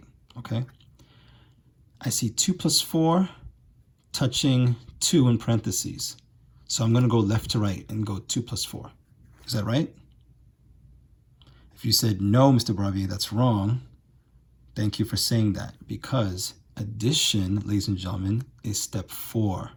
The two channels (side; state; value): both; identical; correlation 1.00